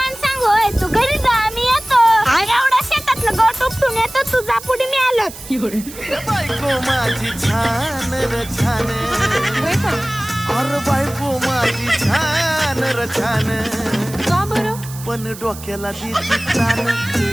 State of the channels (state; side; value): noise; right; hiss, 15 dB below the sound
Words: सांगोय, तू घरी जा, मी येतो. एवढा शेतातलं गवत उपटून येतो, तू जा पुढे, मी आलो. बायको माझी छान र छान, अरे बायको माझी छान र छान, का बरं? पण डोक्याला देती तान.